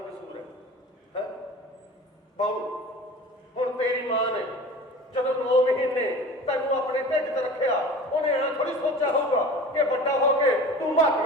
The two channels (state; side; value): normal; both; correlation 0.38